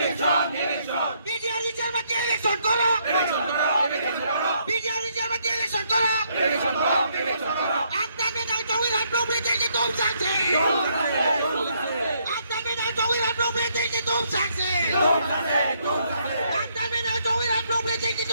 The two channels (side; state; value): both; inverted; correlation -0.72